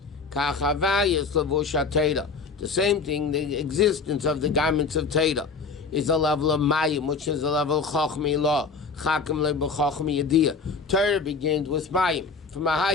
The same thing, the existence of the garments of Torah is a level of Mayim, which is a level of Chochmi law. Torah begins with Mayim, from the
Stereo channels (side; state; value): right; quieter; 4.6 dB